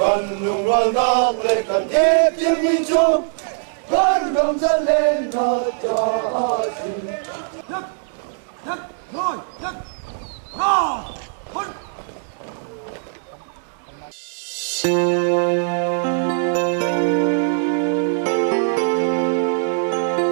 lùng loan nang lệ cần thiết tiếng mi chung, con gầm dẫn lên nó cho xin. Nhất, nhất, rồi, nhất, rồi, hôn.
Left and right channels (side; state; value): left; silent; digital silence